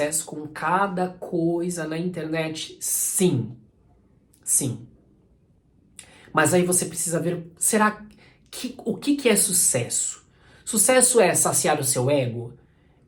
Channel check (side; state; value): both; identical; correlation 1.00